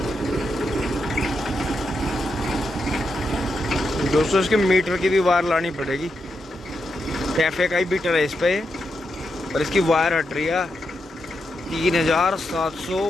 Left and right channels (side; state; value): both; normal; correlation 0.84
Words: दोस्तों इसके मीटर की भी वायर लानी पड़ेगी। कैफे का ही मीटर है इस पे, और इसकी वायर हट रही है